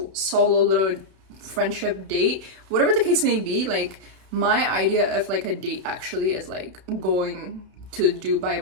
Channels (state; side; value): late; left; 31 ms